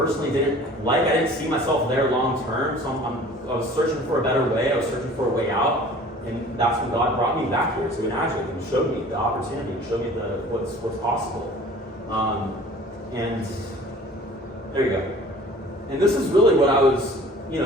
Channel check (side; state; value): both; normal; correlation 0.47